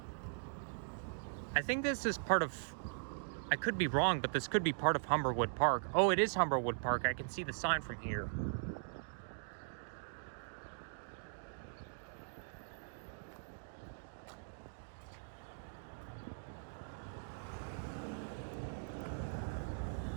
I think this is part of, I could be wrong, but this could be part of Humberwood Park. Oh, it is Humberwood Park. I can see the sign from here.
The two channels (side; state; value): left; silent; digital silence